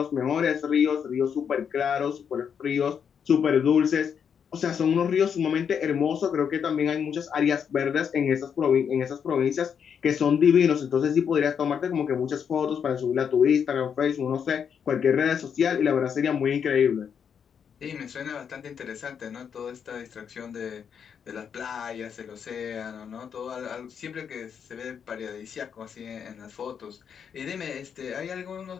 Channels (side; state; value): right; quieter; 7.4 dB